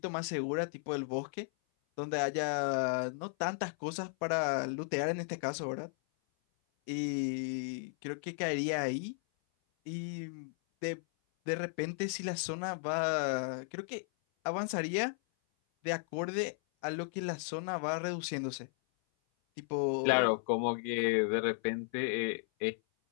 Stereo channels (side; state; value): right; silent; 54 dB below the other